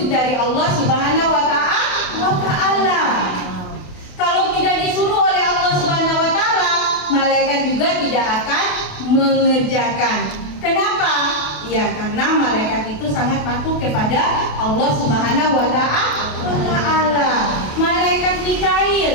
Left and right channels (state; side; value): late; right; 28 ms